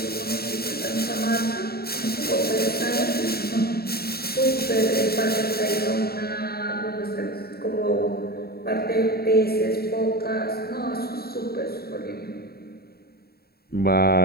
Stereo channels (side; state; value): right; late; 0.45 ms